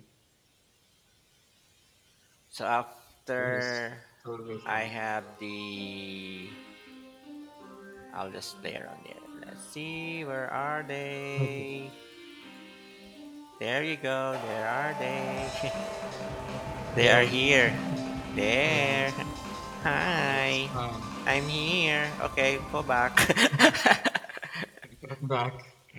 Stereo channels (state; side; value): identical; both; correlation 1.00